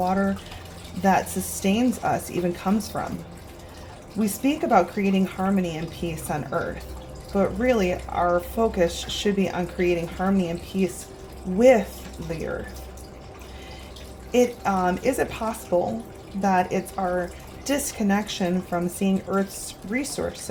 that sustains us even comes from. We speak about creating harmony and peace on Earth, but really our focus should be on creating harmony and peace with the Earth. Is it possible that it's our disconnection from seeing Earth's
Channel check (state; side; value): identical; both; correlation 1.00